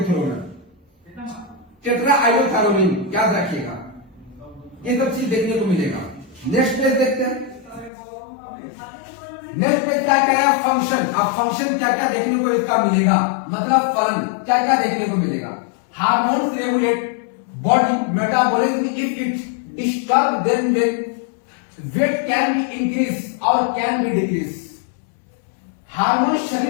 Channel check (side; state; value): right; drops out; at 7.9 s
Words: थ्रू में। टेट्राआइडोथैरोनिन याद रखिएगा, ये सब चीज देखने को मिलेगा। नेक्स्ट पेज देखते हैं। नेक्स्ट पेज क्या कह रहा है, फंक्शन। अब फंक्शन क्या क्या देखने को इसका मिलेगा, मतलब फलन क्या क्या देखने को मिलेगा। Hormones regulate body metabolism if it disturb then weight can be increase और कैन बी डिक्रीज। हार्मोन